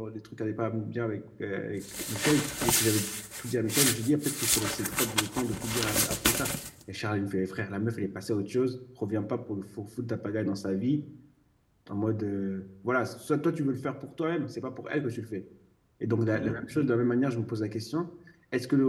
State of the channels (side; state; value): both; identical; correlation 1.00